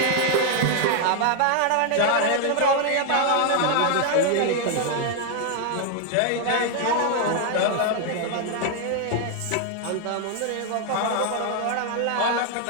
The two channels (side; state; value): both; different; correlation 0.00